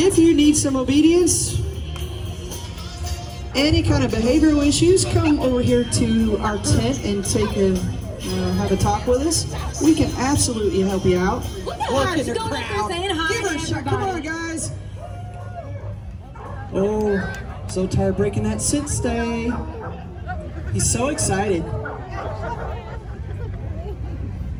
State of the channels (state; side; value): identical; both; correlation 1.00